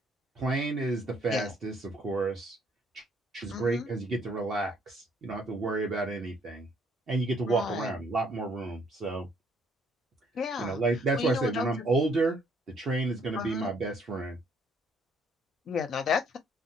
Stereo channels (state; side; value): normal; both; correlation 0.65